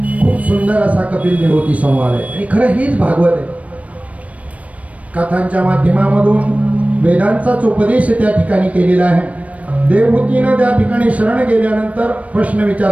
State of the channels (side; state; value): left; late; 0.066 ms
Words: खूप सुंदर असा कपिल देवहूती संवाद आहे आणि खरं हेच भागवत आहे. कथांच्या माध्यमामधून वेदांचाच उपदेश त्या ठिकाणी केलेला आहे. देवहूतीनं त्या ठिकाणी शरण गेल्यानंतर प्रश्न